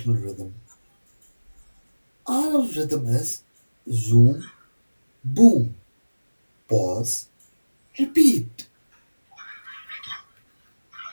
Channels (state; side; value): inverted; both; correlation -1.00